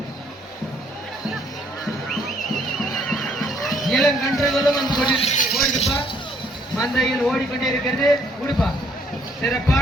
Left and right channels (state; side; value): normal; both; correlation 0.65